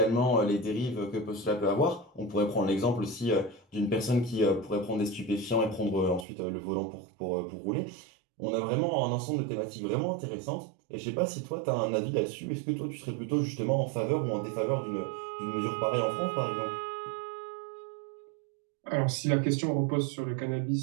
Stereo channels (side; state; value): left; drops out; at 6.2 s